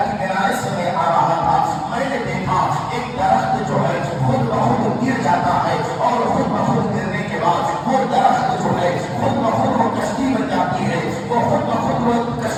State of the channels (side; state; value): both; identical; correlation 1.00